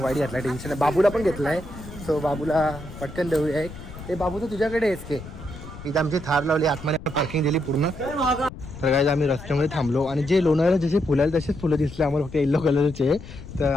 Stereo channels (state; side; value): noise; left; rumble, 14 dB below the sound